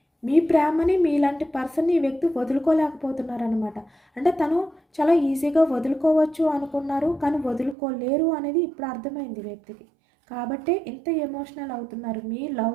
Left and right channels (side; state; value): left; drops out; at 7.8 s